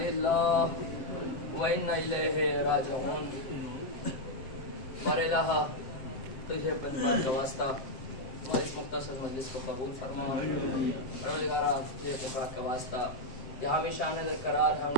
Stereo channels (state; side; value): late; right; 7.6 ms